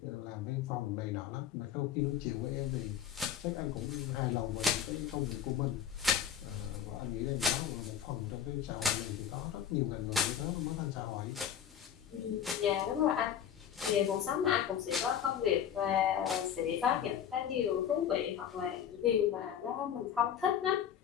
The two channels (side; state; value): right; quieter; 9.0 dB